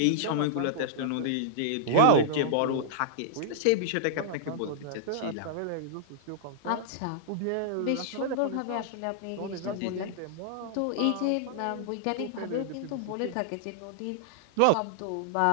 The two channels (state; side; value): different; both; correlation -0.02